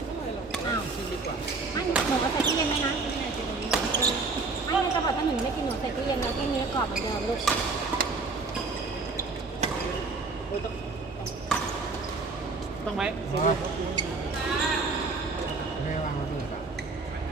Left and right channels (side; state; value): left; quieter; 3.9 dB